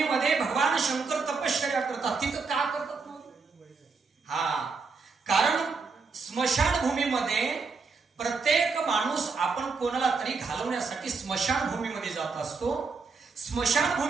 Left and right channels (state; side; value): quieter; left; 4.6 dB